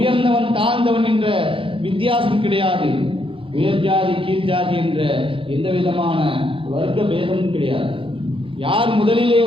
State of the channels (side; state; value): left; late; 0.26 ms